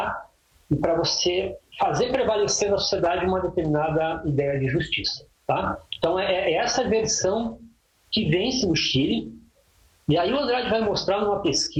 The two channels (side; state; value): both; identical; correlation 1.00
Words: e para você fazer prevalecer na sociedade uma determinada ideia de justiça. Tá? Então, é essa versão que vence no Chile. E aí o Andrade vai mostrar numa